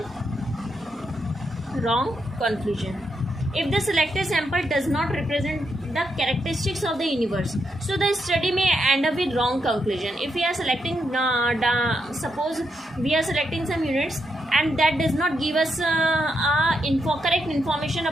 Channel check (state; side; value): normal; both; correlation 0.81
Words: Wrong conclusion. If the selected sample does not represent the characteristics of the universe, so the study may end up with wrong conclusion. If we are selecting, suppose we are selecting some units and that does not give us correct information